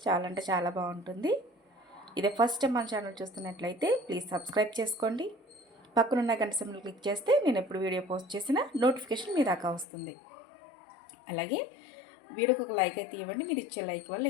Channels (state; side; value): drops out; right; at 9.9 s